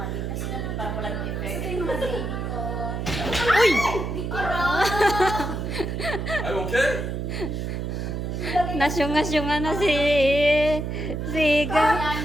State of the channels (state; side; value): noise; right; hum, 3 dB below the sound